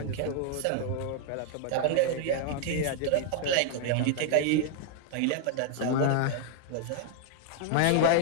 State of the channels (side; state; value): both; different; correlation 0.00